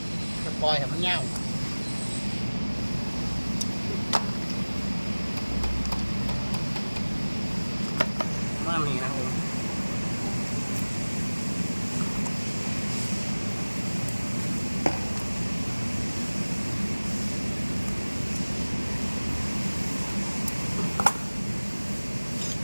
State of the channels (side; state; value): both; inverted; correlation -1.00